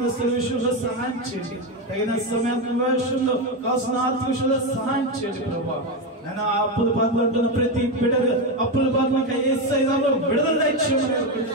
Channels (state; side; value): normal; both; correlation 0.11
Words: విషయంలో సహాయం చేయండి. తగిన సమయాన్ని విషయంలో కావాల్సిన ఆర్థిక విషయంలో సహాయం చేయండి ప్రభా. నేను అప్పుల బాధలు అంటున్న ప్రతి బిడ్డలు అప్పుల బాధలకు యేసయ్యలో విడుదల ఇచ్చేయమని